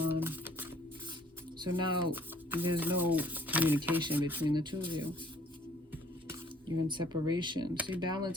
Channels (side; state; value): both; normal; correlation 0.59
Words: So now there's no communication between the two of you. You're in separation. See,